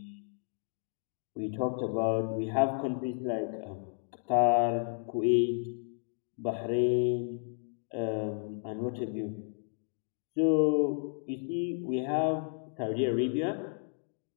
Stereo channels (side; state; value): right; silent; digital silence